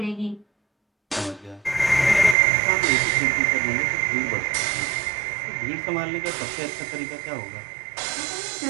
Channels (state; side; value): drops out; left; at 2.4 s